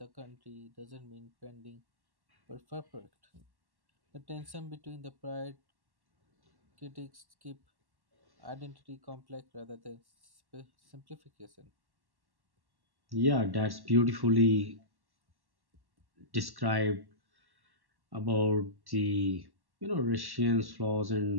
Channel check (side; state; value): left; late; 1.1 ms